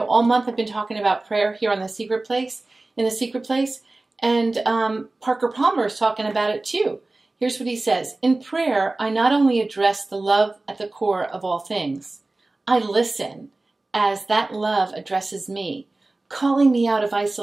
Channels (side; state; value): left; quieter; 3.0 dB